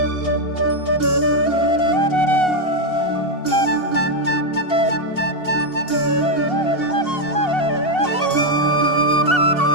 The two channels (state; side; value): late; right; 2.7 ms